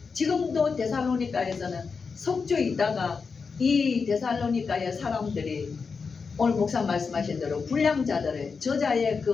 지금도 데살로니가에서는 석주에 있다가 이 데살로니가의 사람들이 오늘 목사 말씀하신 대로 불량자들을 저자의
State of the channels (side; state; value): right; quieter; 5.2 dB